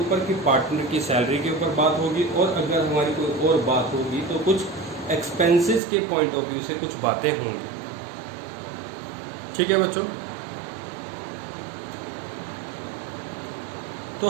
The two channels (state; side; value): drops out; left; at 5.8 s